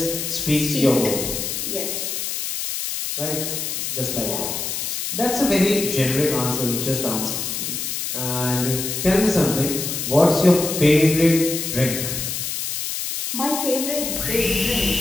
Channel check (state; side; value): noise; left; hiss, 3 dB below the sound